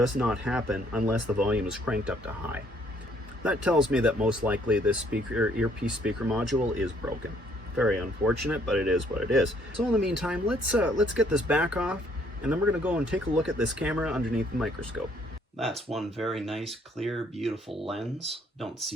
not happen unless the volume is cranked up to high. That tells me that most likely this earpiece speaker module is broken. Very unfortunate, but it is what it is. So in the meantime, let's get this back off, and then we're gonna go and take a look at this camera underneath the microscope. That's one very nice, clear, beautiful lens. Don't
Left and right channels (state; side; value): normal; both; correlation 0.65